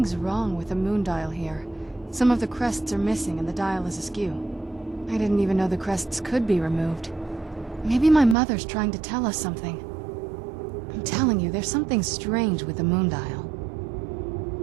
wrong with the moon dial here. Some of the crests are missing and the dial is askew. I didn't even know the crests could be removed. Maybe my mother's trying to tell us something. I'm telling you, there's something strange with the moon dial.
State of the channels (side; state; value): left; drops out; at 8.3 s